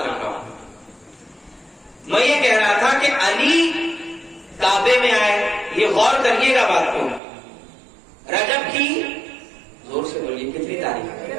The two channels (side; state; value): left; drops out; at 7.2 s